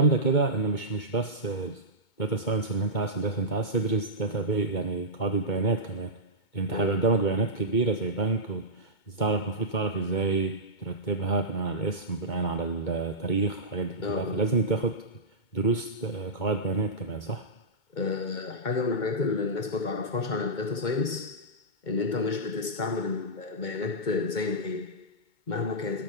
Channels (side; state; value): right; late; 2.2 ms